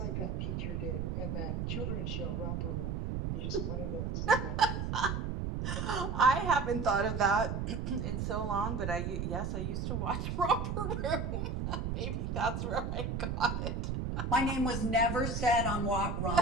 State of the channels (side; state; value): right; noise; rumble, 2 dB below the sound